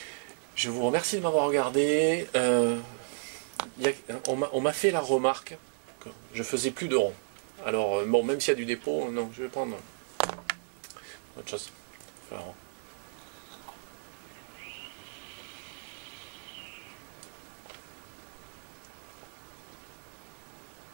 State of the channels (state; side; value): silent; left; 56 dB below the other